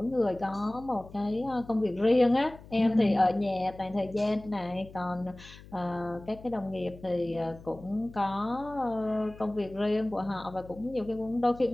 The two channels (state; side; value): noise; left; hum, 19 dB below the sound